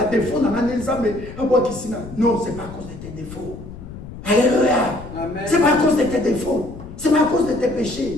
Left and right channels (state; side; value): noise; left; rumble, 13 dB below the sound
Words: défaut dans l'année, mais à boire qui s'y non, c'est pas à cause de tes défauts. Alléluia. C'est pas à cause de tes défauts. C'est pas à cause de tes